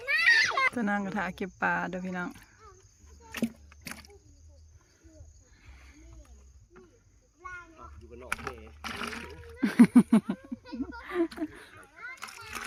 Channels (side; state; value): both; identical; correlation 1.00